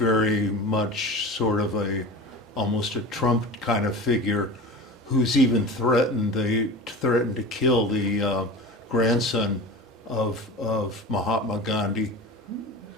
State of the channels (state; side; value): normal; both; correlation 0.33